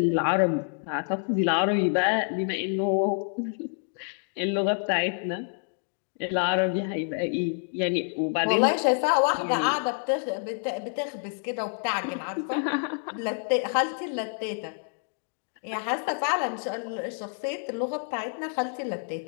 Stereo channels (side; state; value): right; silent; digital silence